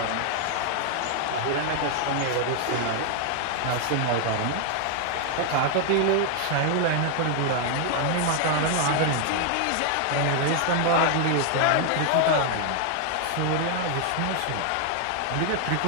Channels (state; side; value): different; both; correlation 0.00